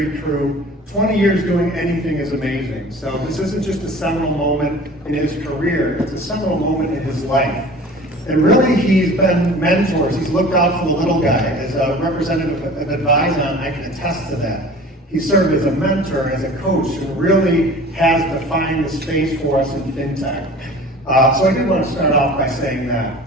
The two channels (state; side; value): normal; both; correlation 0.43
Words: crew. 20 years doing anything is amazing. So this isn't just a seminal moment in his career, it's a seminal moment in his life. And really, he's been mentors. He's looked out for the little guy. As a representative of Advyzon, I can attest to that. He served as a mentor, as a coach, and really has defined the space for us in fintech. So I did want to start off by saying that.